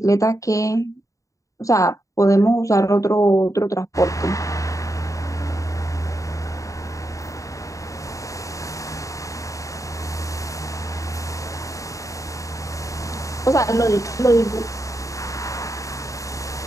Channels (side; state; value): right; late; 0.16 ms